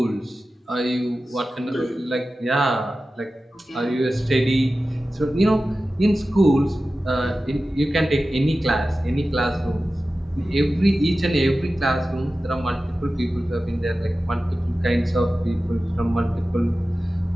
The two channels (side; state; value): both; normal; correlation 0.95